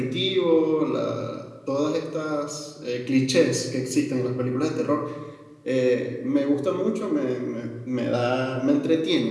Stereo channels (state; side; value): identical; both; correlation 1.00